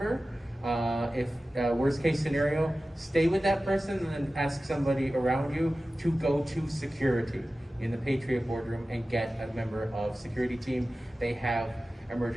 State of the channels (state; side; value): normal; both; correlation 0.95